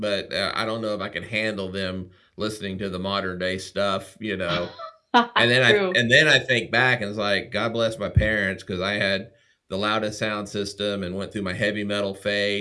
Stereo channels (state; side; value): identical; both; correlation 1.00